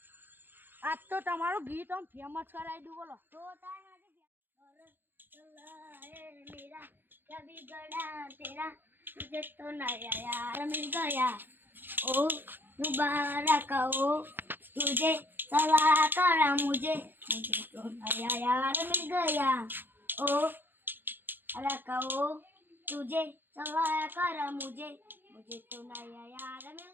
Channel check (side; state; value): left; late; 0.096 ms